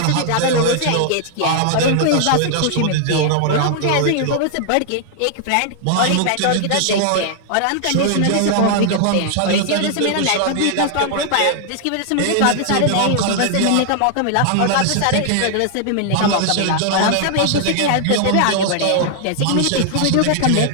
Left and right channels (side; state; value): both; different; correlation -0.01